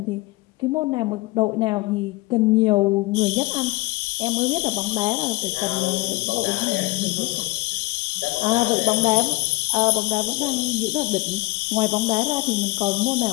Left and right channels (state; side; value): quieter; right; 22.4 dB